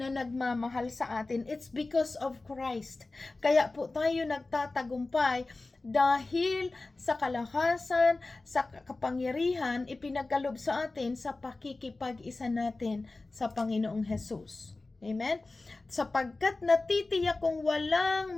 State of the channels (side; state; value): right; quieter; 3.3 dB